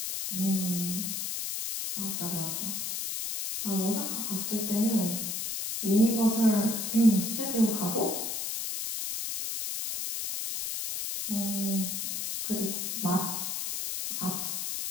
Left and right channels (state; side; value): noise; left; hiss, 3 dB below the sound